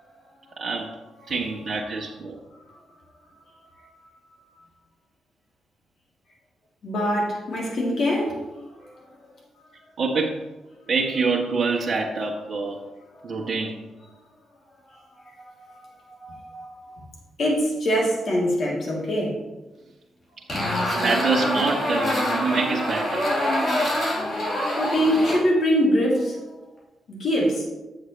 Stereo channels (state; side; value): normal; both; correlation 0.77